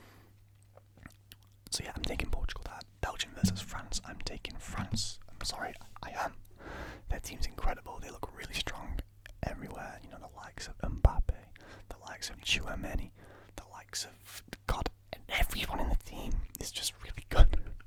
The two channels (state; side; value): identical; both; correlation 1.00